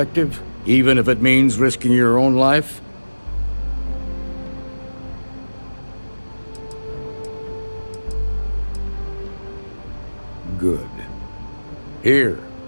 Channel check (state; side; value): inverted; both; correlation -1.00